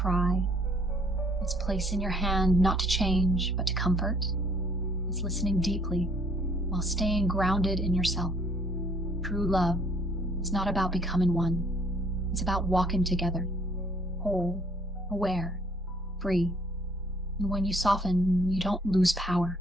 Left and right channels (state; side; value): normal; both; correlation 0.63